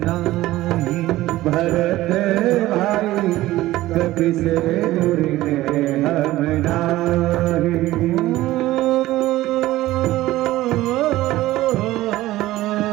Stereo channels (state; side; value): quieter; left; 16.4 dB